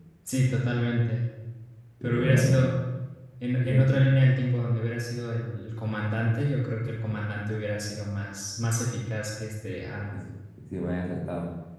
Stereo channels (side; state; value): both; identical; correlation 1.00